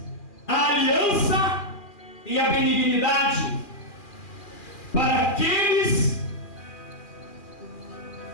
a aliança e a benignidade para aqueles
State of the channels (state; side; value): late; right; 2.4 ms